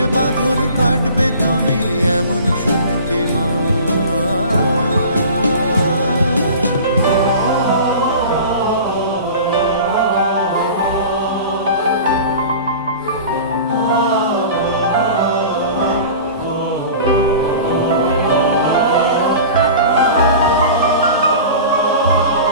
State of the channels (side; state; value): both; inverted; correlation -0.39